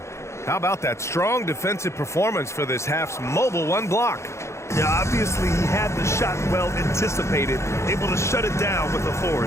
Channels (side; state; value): right; late; 0.14 ms